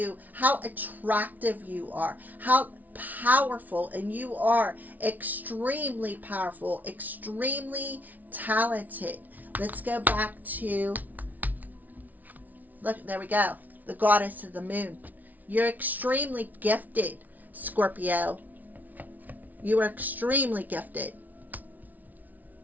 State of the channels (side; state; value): left; late; 0.078 ms